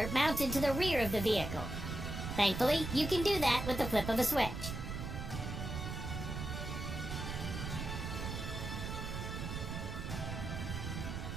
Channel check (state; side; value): noise; right; rumble, 5 dB below the sound